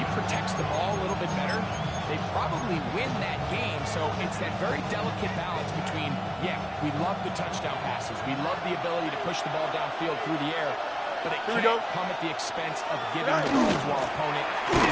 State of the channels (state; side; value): identical; both; correlation 1.00